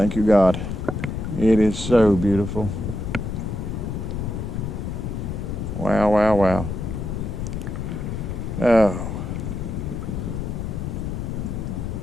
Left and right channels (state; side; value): noise; left; rumble, 4 dB below the sound